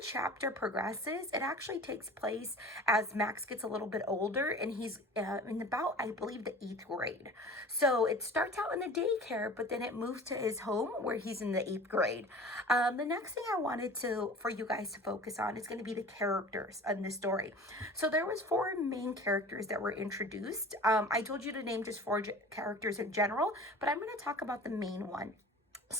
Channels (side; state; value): both; normal; correlation 0.41